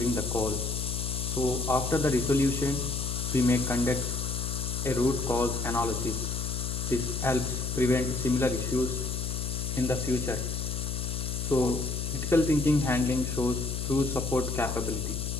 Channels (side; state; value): left; noise; hum, 3 dB below the sound